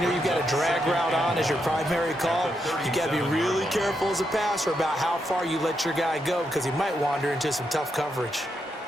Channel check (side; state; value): both; normal; correlation 0.82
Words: you've got a drag route on as your primary call, you got to be really careful as a passer about how far you let your guy go because he might wander into some tough coverage.